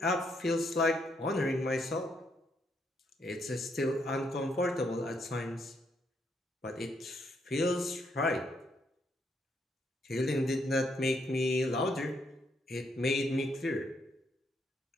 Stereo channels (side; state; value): both; normal; correlation 0.75